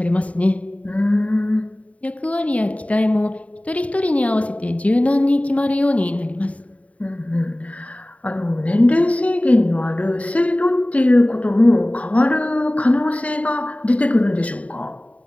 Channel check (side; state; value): right; late; 0.067 ms